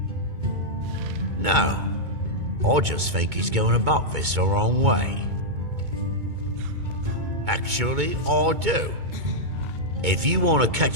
No, I just think he's going about this the wrong way. Actually, I do. If you want to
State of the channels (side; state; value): left; late; 2.2 ms